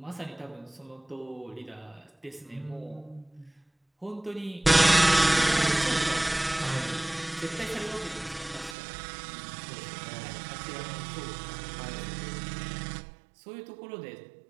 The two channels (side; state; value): left; drops out; at 8.8 s